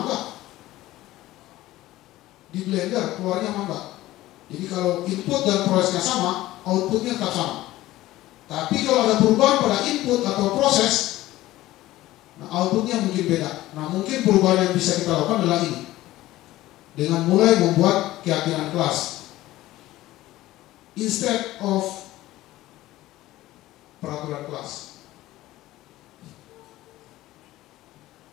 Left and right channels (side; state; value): right; quieter; 16.3 dB